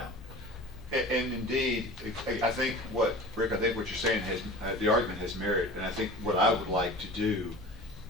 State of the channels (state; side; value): normal; both; correlation 0.38